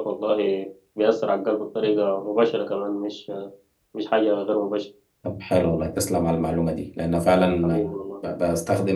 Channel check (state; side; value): identical; both; correlation 1.00